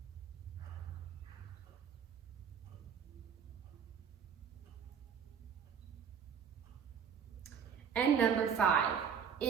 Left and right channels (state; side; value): quieter; left; 7.4 dB